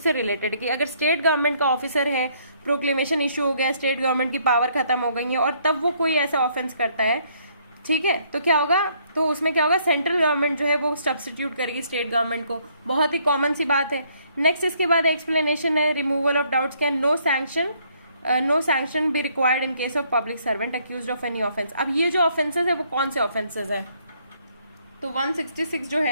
रिलेटेड कि अगर स्टेट गवर्नमेंट का ऑफिसर है, प्रोक्लेमेशन इशू हो गया, स्टेट गवर्नमेंट की पावर खत्म हो गई है और तब वो कोई ऐसा ऑफेंस करता है, ठीक है, तो क्या होगा, तो उसमें क्या होगा, सेंट्रल गवर्नमेंट जो है वो सब्स्टिट्यूट करेगी स्टेट गवर्नमेंट को। बहुत ही कॉमन सी बात है। नेक्स्ट इसके बाद एक्सप्लेनेशन है, removal of doubts, can no sanction be required in case of public servant accused of any offence. अब ये जो ऑफेंसेस है वो कौन से ऑफेंसेस है, तो 166 जो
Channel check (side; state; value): both; inverted; correlation -0.67